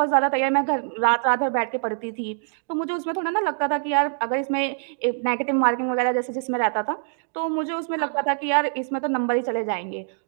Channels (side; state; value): left; silent; digital silence